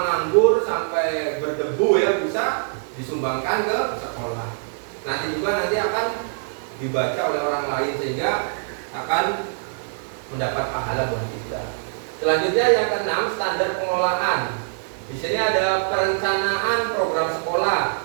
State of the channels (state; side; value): silent; left; digital silence